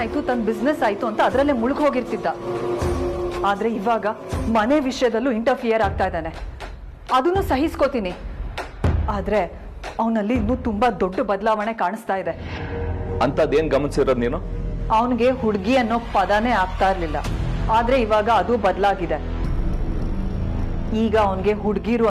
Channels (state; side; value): identical; both; correlation 1.00